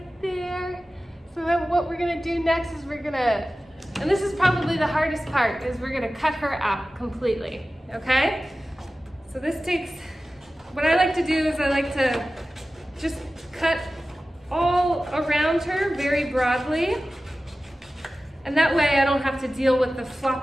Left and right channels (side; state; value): both; normal; correlation 0.95